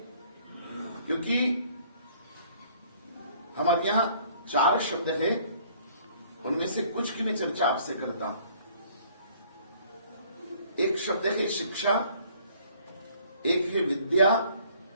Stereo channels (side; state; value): both; inverted; correlation -0.58